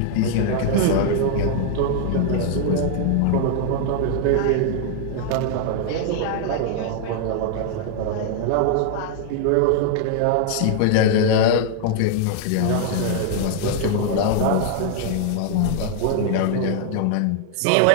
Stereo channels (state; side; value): different; both; correlation 0.00